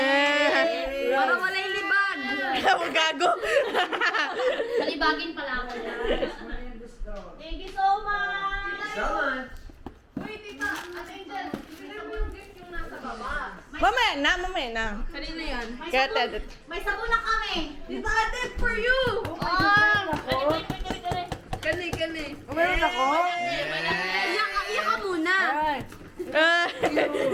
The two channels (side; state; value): both; identical; correlation 1.00